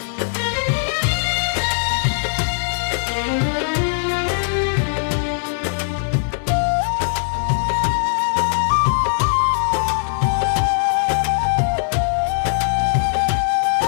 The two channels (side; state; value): right; silent; digital silence